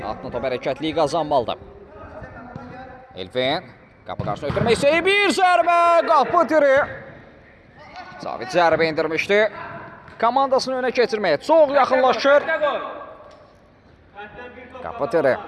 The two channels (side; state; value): both; identical; correlation 1.00